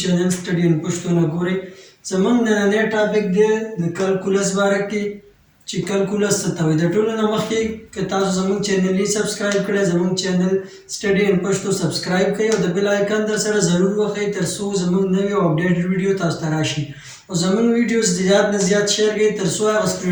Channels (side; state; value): both; identical; correlation 1.00